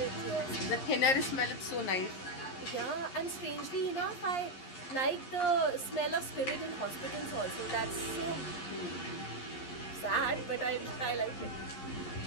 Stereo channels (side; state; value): right; late; 11 ms